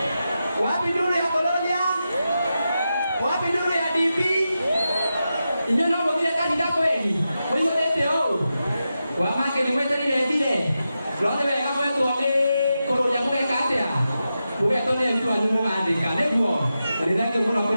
wapi nduru ya Kolonia? Wapi nduru ya DP? Inyo no mũthire kanitha kweli? Mũihũrĩte ũũ? Wamake nĩ mweterire njire? Rothe wega mwetwo nĩ kũrũria mũgeka atĩa? Mũgetwo nĩ aruti wanyu mũgandĩka nĩguo? Na nĩ thengiũ mũno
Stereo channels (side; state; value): both; inverted; correlation -0.90